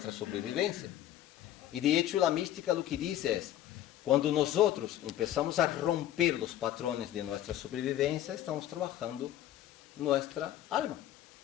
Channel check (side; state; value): right; quieter; 12.5 dB